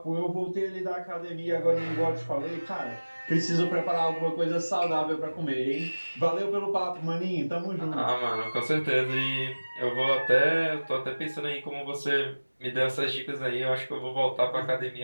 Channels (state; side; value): inverted; both; correlation -1.00